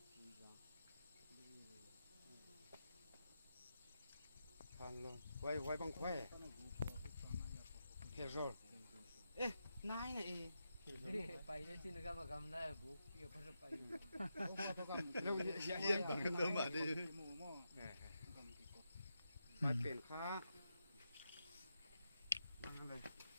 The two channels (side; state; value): both; inverted; correlation -0.86